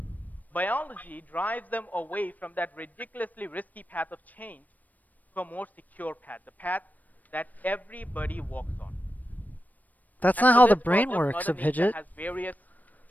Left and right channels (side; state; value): right; late; 0.080 ms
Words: Biology drives them away from that ridiculously risky path of change to a more secure path, the path that everybody walks on. That's not how the brain works, Abhijit. Has various